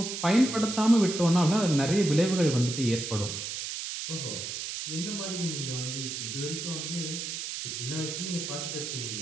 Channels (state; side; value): noise; right; hiss, 5 dB below the sound